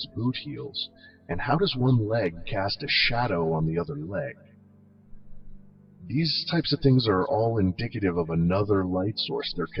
boot heels? And how does one leg cast a shadow on the other leg? These types of things are all indicative of another light source. They're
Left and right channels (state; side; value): identical; both; correlation 1.00